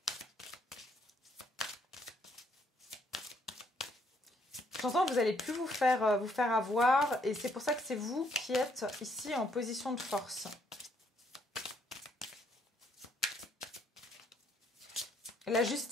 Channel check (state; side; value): normal; both; correlation 0.69